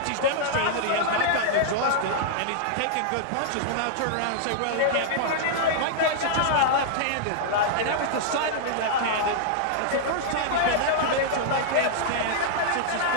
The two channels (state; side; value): different; both; correlation -0.01